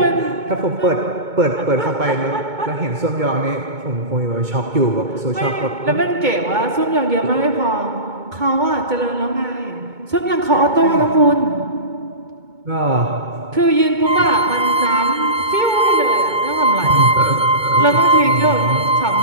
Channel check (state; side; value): late; left; 2.2 ms